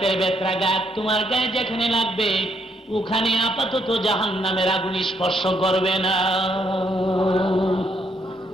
ব্যত্রাঘাত তোমার গায়ে যেখানে লাগবে ওখানে আপাতত জাহান্নামের আগুন স্পর্শ করবে না।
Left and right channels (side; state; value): both; normal; correlation 0.73